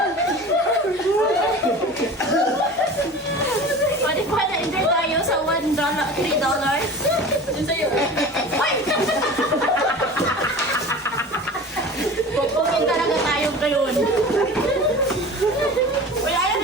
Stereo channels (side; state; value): both; normal; correlation 0.36